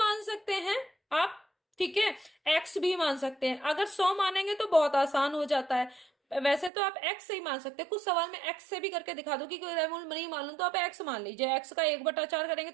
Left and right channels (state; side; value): drops out; left; at 6.7 s